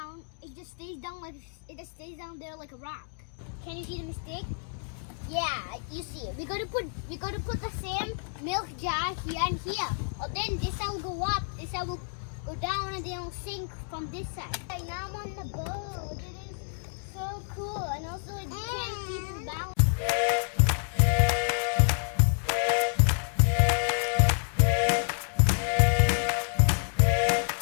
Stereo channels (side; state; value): right; silent; digital silence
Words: it just stays down there like a rock. Can you see the mistake? Yeah, you see it. We gotta put the same milk jar here and here. Or then this side will go up, this side will go down, and then it'll sink from this side. Right now I'm on the boat. It is so cool, and also it can't keep its balance.